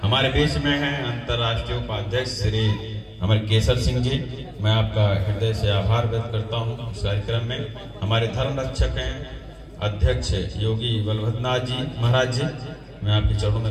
हमारे बीच में हैं अंतर्राष्ट्रीय उपाध्यक्ष श्री हमारे केसर सिंह जी, मैं आपका हृदय से आभार व्यक्त करता हूं। इस कार्यक्रम में हमारे धर्म रक्षक हैं अध्यक्ष योगी बलभद्रनाथ जी महाराज जी, मैं आपके चरणों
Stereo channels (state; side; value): identical; both; correlation 1.00